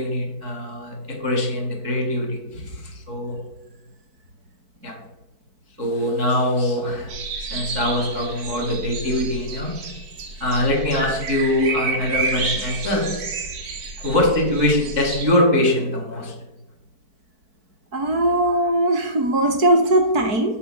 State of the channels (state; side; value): late; left; 4.5 ms